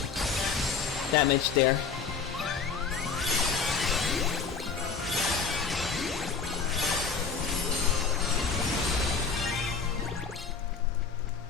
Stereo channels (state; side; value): quieter; right; 5.4 dB